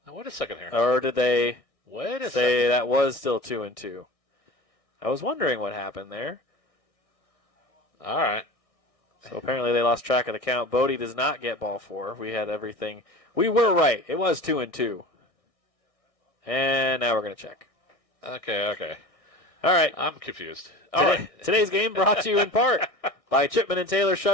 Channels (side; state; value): right; late; 1.6 ms